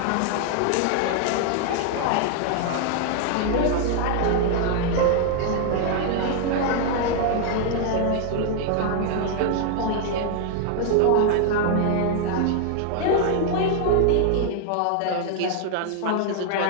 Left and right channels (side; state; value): both; different; correlation 0.00